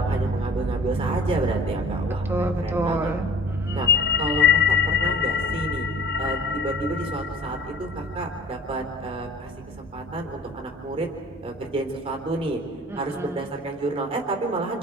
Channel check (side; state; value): both; normal; correlation 0.47